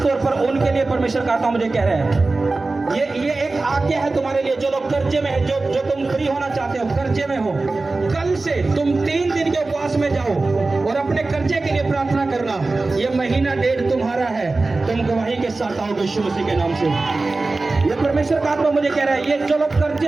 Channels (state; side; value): quieter; left; 3.4 dB